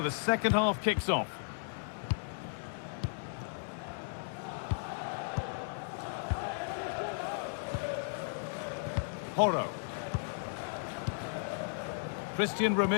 second half kicks off. Porro. Christian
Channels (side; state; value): right; silent; digital silence